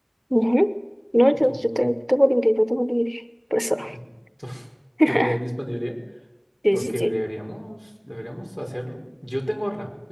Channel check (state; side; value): identical; both; correlation 1.00